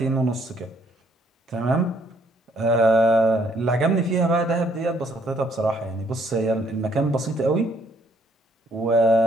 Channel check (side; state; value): both; normal; correlation 0.67